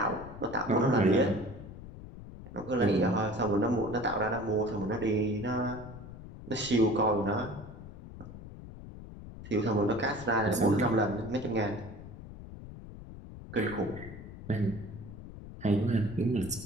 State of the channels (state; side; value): noise; left; rumble, 14 dB below the sound